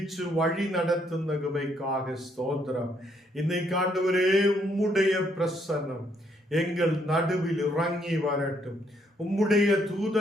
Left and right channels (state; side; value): normal; both; correlation 0.71